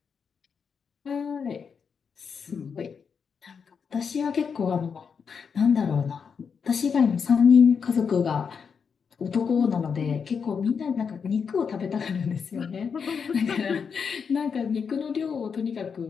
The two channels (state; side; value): quieter; right; 6.2 dB